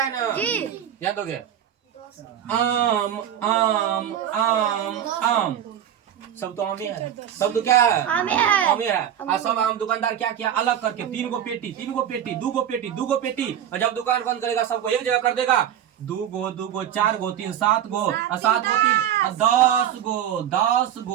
ना याद दोगे आम आम आम आम सब तो आम ही है, सब तो क्या है आम ही है। और सब आम दुकानदार क्या किया अलग करके 3 गो पेटी 2 गो पेटी और जब दुकान बंद करेगा सबको एक जगह कर देगा 2 गो 4 गो 3 7 गो और 7 गो 3 10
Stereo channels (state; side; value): quieter; left; 10.0 dB